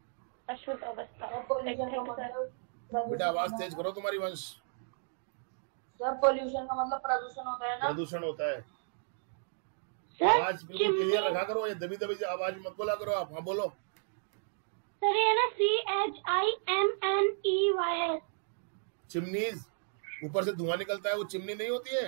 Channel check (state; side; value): silent; left; digital silence